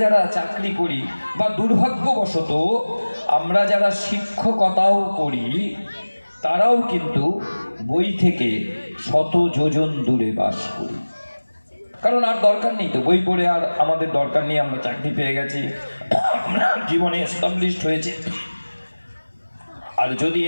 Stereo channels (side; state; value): both; inverted; correlation -1.00